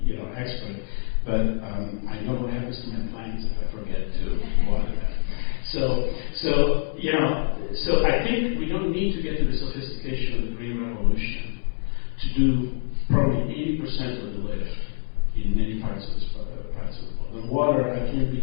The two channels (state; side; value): silent; right; 62 dB below the other